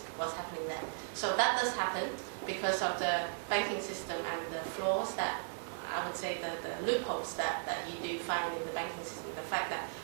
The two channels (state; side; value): silent; left; 53 dB below the other